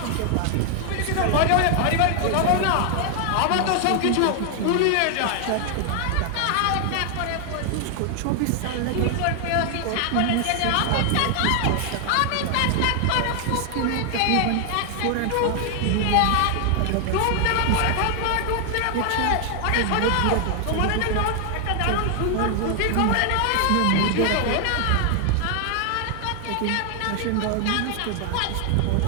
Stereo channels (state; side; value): different; both; correlation 0.00